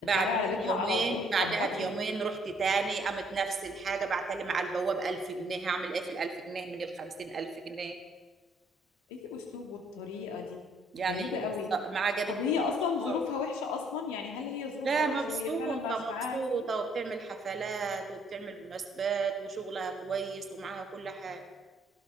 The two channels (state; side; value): normal; both; correlation 0.65